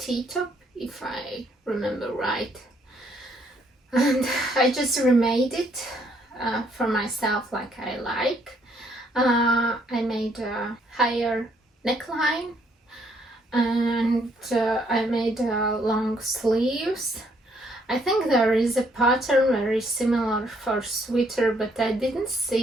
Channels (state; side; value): normal; both; correlation 0.69